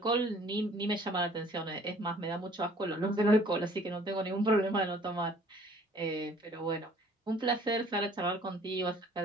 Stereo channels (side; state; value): both; normal; correlation 0.55